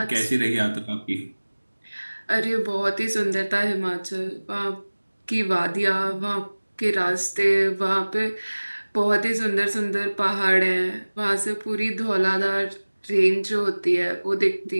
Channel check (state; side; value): inverted; both; correlation -1.00